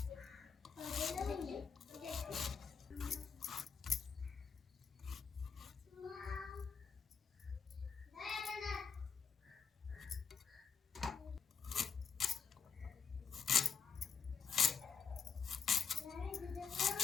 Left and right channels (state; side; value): quieter; right; 6.0 dB